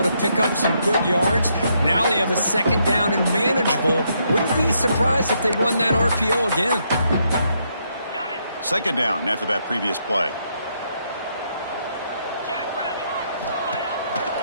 to pick up some good yards. Now they have a second down and manageable. Wouldn't be surprised if they run that RPO again. Second down after that previous play.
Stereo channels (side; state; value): both; inverted; correlation -0.76